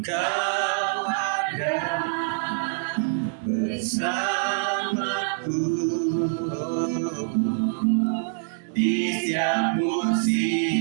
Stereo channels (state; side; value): silent; left; digital silence